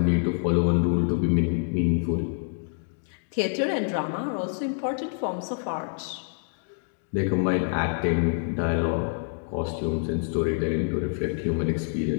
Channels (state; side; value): silent; right; digital silence